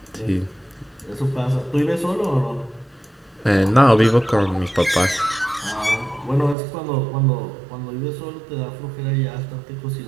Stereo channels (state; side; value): drops out; left; at 6.6 s